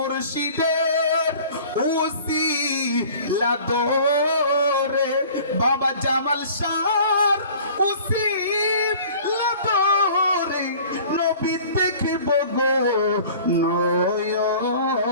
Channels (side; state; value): both; inverted; correlation -0.46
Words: উসিলা দরে বাবা জামাল শাহর উসিলা দরে নবী দেখিব গো